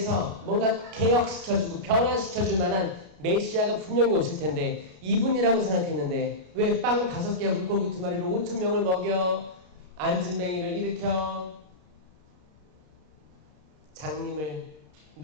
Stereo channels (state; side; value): late; left; 29 ms